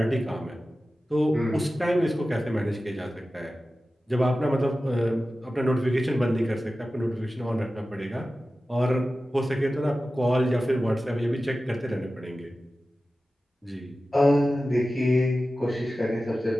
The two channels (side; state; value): both; normal; correlation 0.95